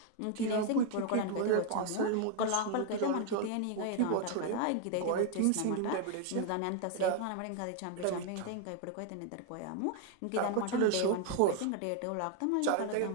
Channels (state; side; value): different; both; correlation 0.00